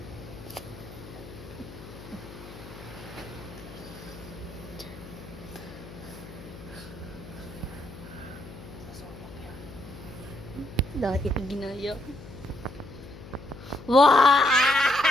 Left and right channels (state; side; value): noise; left; hum, 14 dB below the sound